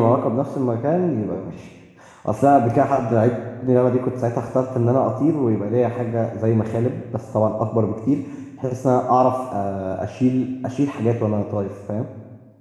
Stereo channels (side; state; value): both; identical; correlation 1.00